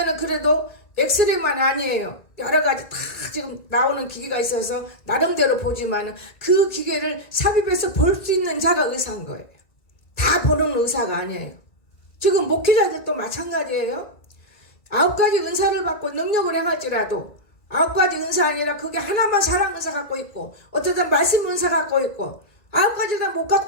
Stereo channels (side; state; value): right; late; 2.4 ms